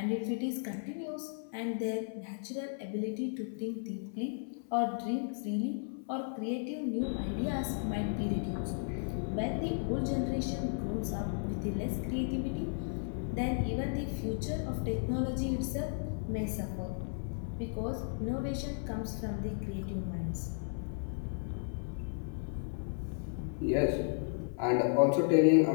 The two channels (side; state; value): right; silent; 55 dB below the other